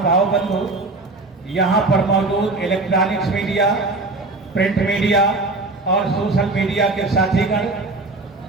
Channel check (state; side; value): quieter; left; 3.2 dB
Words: भाव बंधु, यहाँ पर मौजूद इलेक्ट्रॉनिक्स मीडिया, प्रिंट मीडिया और सोशल मीडिया के साथीगण,